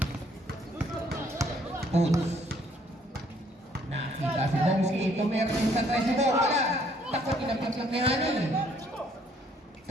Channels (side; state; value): both; normal; correlation 0.64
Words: Puts. Nakita si Bomski. Tumira sa 3 wala. Takot inapit lang ni Hani.